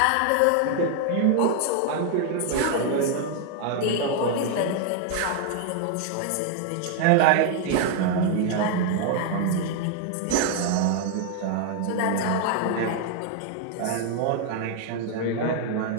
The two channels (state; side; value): different; both; correlation 0.00